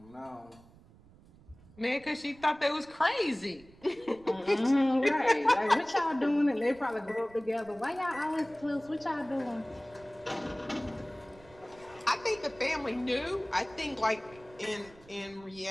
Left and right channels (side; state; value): right; noise; rumble, 24 dB below the sound